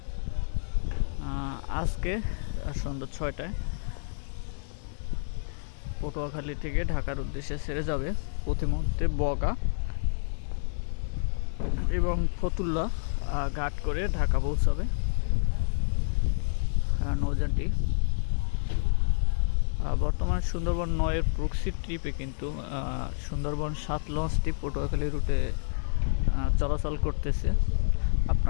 আজকে সন্ধ্যা 6টায় পটুয়াখালী থেকে ঢাকার উদ্দেশ্যে ছেড়ে যাবে প্রতিমধ্যে বগা এবং ফতুল্লা ঘাট করে ঢাকা পৌঁছাবে নৌযানটি। বর্তমানে সুন্দরবন 9-এর প্রক্সি ট্রিপে কিন্তু সুন্দরবন 7 লঞ্চটি পটুয়াখালী রুটে চলাচল করতেছে।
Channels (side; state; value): right; silent; digital silence